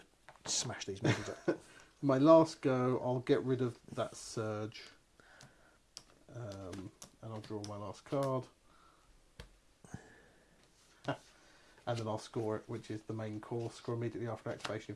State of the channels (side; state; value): both; identical; correlation 1.00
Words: smash these movies up. My last go, I'll get rid of that surge. And I'll draw my last card. And then I'll score it, which is the main course. Score immediately after activation